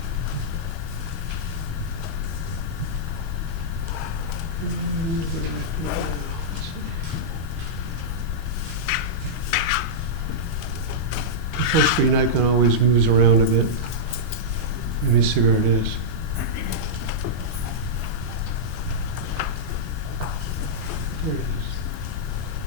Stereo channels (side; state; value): both; normal; correlation -0.10